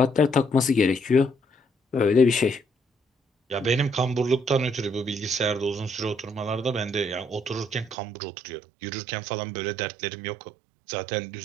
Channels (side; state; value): left; drops out; at 8.0 s